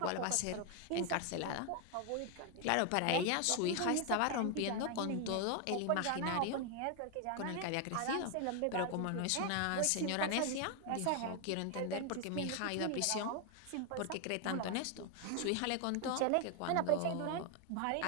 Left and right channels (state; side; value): different; both; correlation 0.01